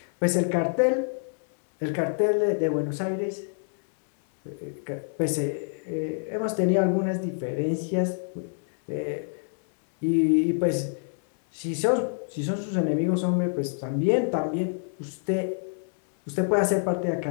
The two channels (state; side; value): silent; right; 60 dB below the other